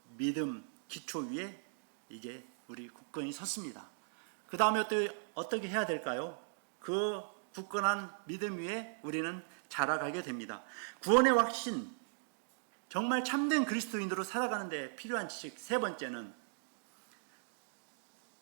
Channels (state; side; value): silent; left; digital silence